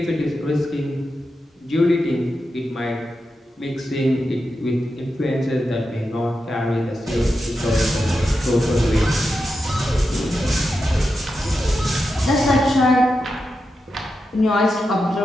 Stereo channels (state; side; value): normal; both; correlation 0.88